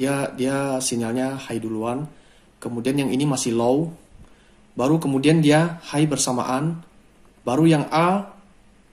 Dia sinyalnya high duluan. Kemudian yang ini masih low. Baru kemudian dia high bersamaan. Baru yang A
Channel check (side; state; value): both; identical; correlation 1.00